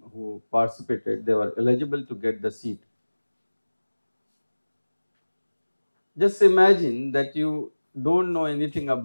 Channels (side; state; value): both; inverted; correlation -1.00